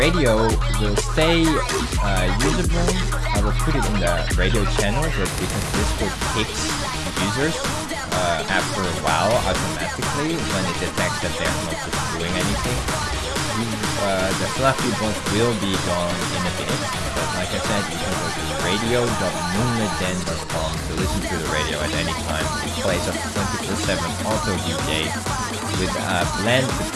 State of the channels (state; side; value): identical; both; correlation 1.00